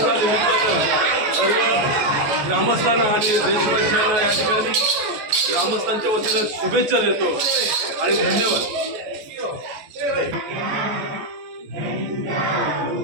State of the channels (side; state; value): left; late; 14 ms